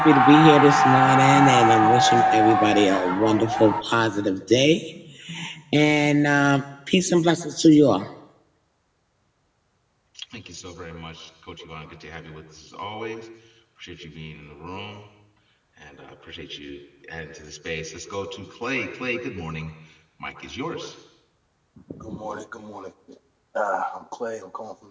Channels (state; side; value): identical; both; correlation 1.00